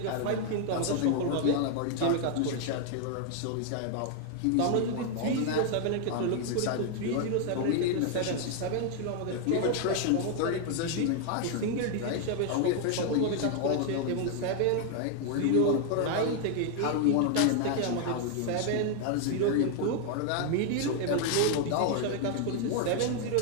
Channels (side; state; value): both; different; correlation 0.01